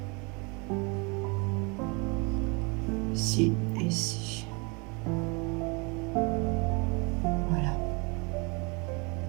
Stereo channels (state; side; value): quieter; left; 30.4 dB